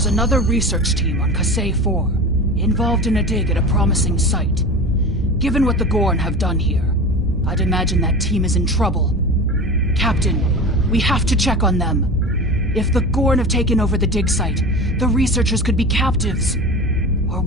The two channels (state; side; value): normal; both; correlation 0.31